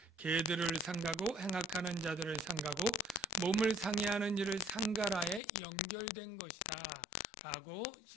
개들을 상가고 행악하는 자들을 상가고 몸을 상해하는 일을 상가라에 연결된 것이다 라고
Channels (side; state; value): right; drops out; at 5.4 s